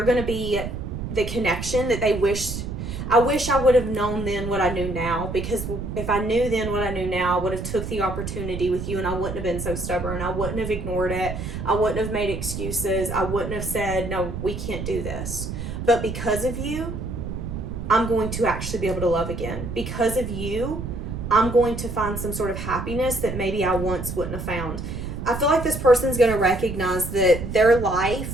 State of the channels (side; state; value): right; noise; rumble, 6 dB below the sound